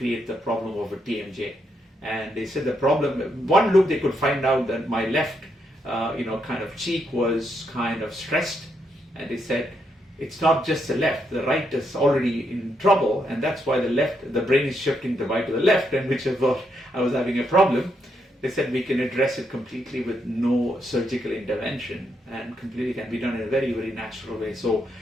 the problem of a TMJ. And they said the problem, one look they could find out that my left kind of cheek was kind of stressed, and they said it's not just the left, the right is already in trouble, and that's why the brain is shifting the right to the left, and which I thought I was having a problem. They said we can address it completely with no surgical intervention, and completely can be done in a very, very natural way. So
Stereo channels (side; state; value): both; normal; correlation 0.79